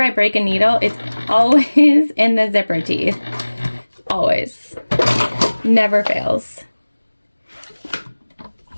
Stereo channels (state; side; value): inverted; both; correlation -1.00